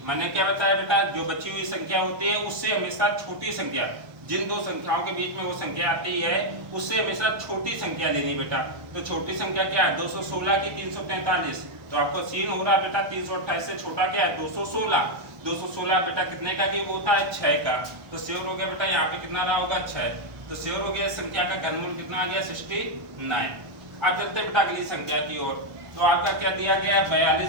मैंने क्या बताया बेटा जो बची हुई संख्या होती है उससे हमेशा छोटी संख्या, जिन दो संख्याओं के बीच में वो संख्या आती है उससे हमेशा छोटी संख्या लेनी बेटा। तो छोटी संख्या क्या है 216 की 343। तो आपको सीन हो रहा है बेटा 328 से छोटा क्या है 216। 216 बेटा कितने का क्यूब होता है 6 का। तो श्योर हो गया बेटा यहाँ पे कितना रहा होगा 6। तो श्योर हो गया इस संख्या का घनमूल कितना आ गया 69। अब चलते बेटा अगली संख्या की ओर। तो आपका क्या दिया गया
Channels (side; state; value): left; late; 1.1 ms